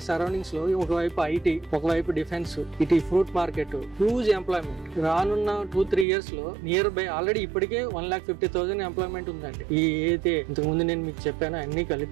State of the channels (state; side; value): drops out; left; at 6.1 s